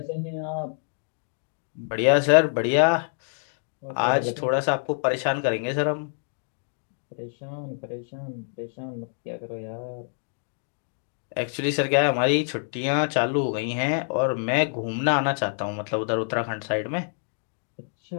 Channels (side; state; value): right; silent; digital silence